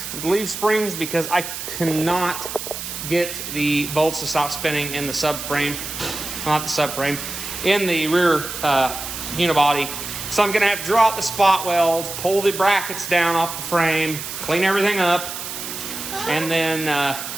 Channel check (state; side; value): noise; right; hiss, 7 dB below the sound